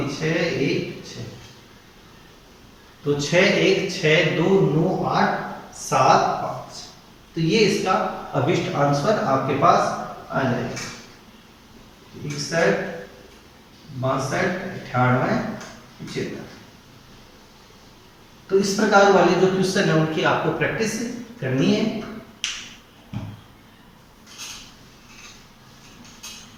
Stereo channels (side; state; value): both; identical; correlation 1.00